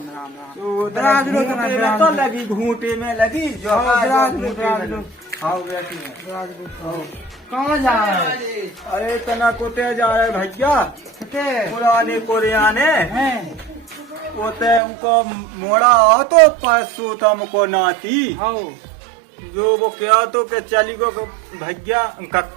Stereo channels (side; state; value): left; drops out; at 14.8 s